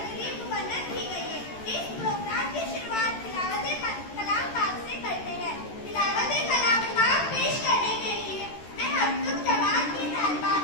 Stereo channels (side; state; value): right; late; 13 ms